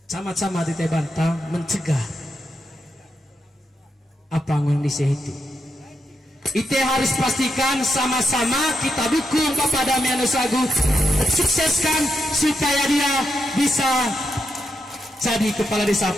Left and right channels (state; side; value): normal; both; correlation 0.84